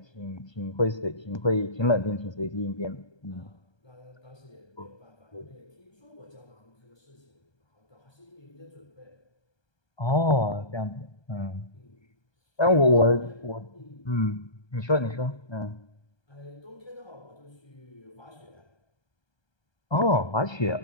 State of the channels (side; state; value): right; late; 1.3 ms